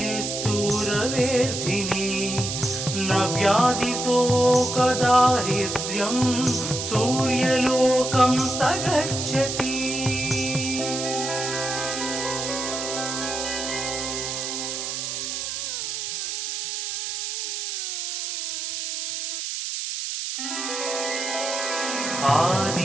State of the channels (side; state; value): right; noise; hiss, 3 dB below the sound